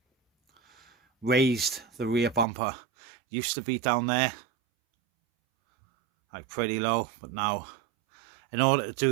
raised the rear bumper. Used to be down there, like pretty low, but now, in order to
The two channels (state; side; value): drops out; left; at 2.5 s